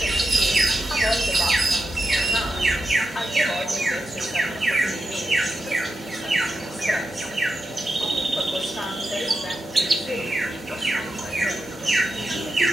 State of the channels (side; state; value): both; normal; correlation 0.88